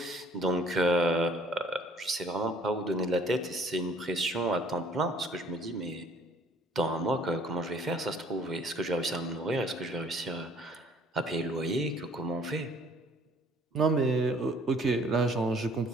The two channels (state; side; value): normal; both; correlation 0.57